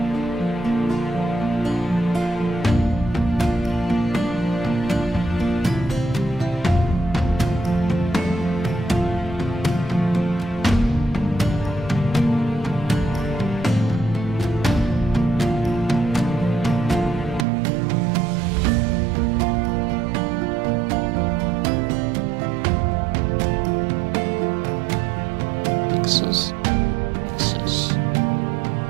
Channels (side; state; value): left; drops out; at 17.4 s